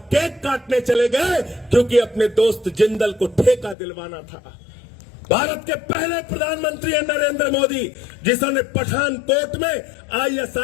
काटने चले गए क्योंकि अपने दोस्त जिंदल को ठेका दिलवाना था। भारत के पहले प्रधानमंत्री है नरेंद्र मोदी, जिन्होंने पठानकोट में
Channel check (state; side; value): drops out; right; at 3.8 s